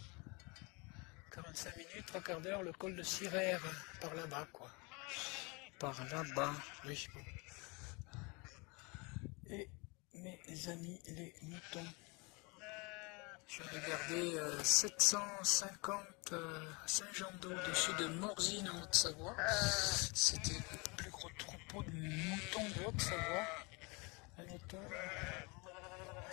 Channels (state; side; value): quieter; right; 28.6 dB